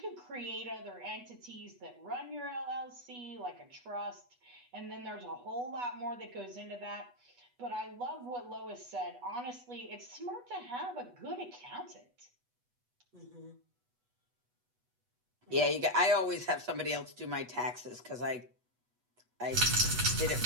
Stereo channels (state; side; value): late; left; 8.2 ms